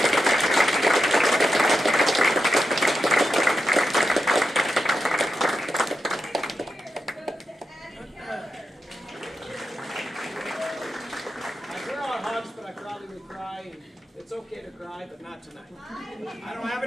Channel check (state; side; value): normal; both; correlation 0.88